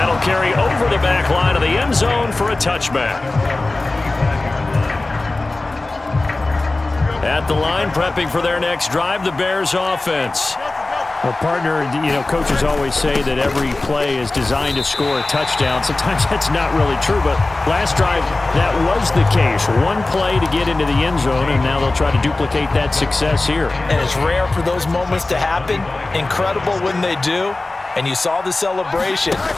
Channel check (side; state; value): right; quieter; 3.1 dB